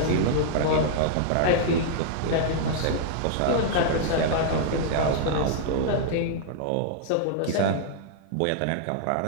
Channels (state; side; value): different; both; correlation -0.01